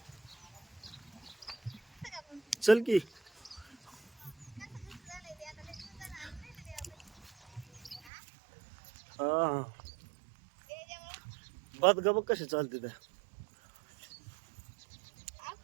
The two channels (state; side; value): drops out; left; at 8.1 s